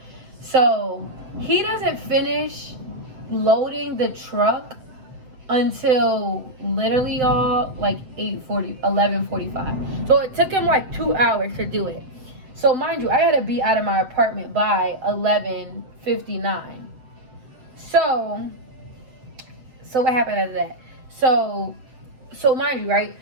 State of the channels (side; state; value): left; late; 7.8 ms